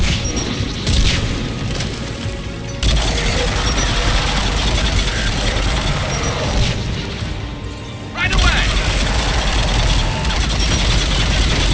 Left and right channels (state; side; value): identical; both; correlation 1.00